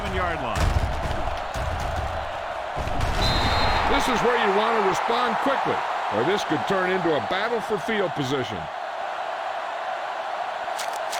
line. This is where you want to respond quickly, or this could turn into a battle for field position.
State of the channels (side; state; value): both; identical; correlation 1.00